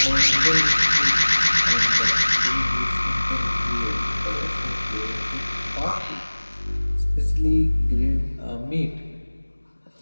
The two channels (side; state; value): both; inverted; correlation -1.00